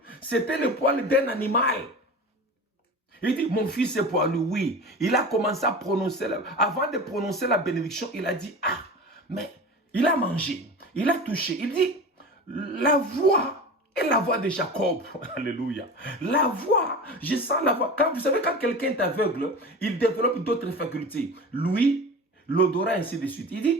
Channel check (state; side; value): normal; both; correlation 0.32